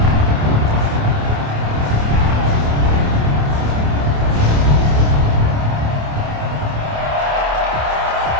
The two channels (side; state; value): left; late; 28 ms